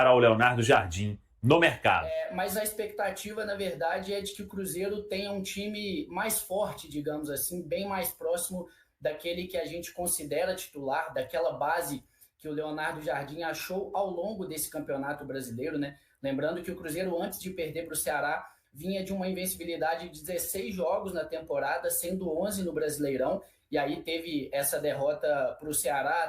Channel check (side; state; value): both; identical; correlation 1.00